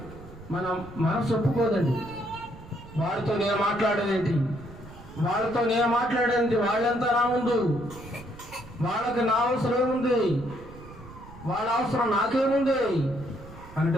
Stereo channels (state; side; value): noise; right; rumble, 17 dB below the sound